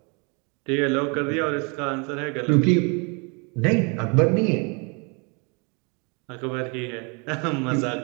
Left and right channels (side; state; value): left; quieter; 32.6 dB